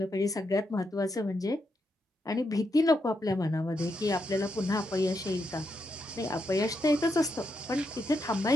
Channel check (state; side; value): normal; both; correlation 0.82